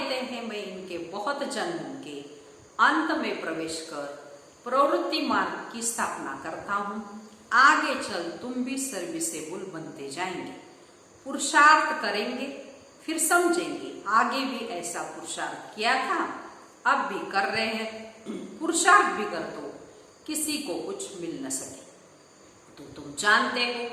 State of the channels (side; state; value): both; identical; correlation 1.00